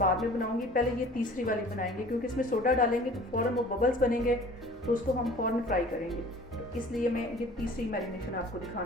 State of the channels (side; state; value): both; normal; correlation 0.46